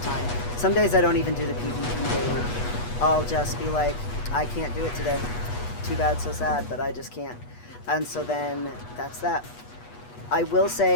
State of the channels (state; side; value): late; right; 8.3 ms